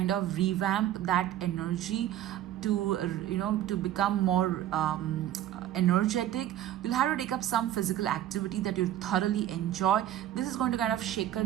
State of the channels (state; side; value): quieter; left; 12.2 dB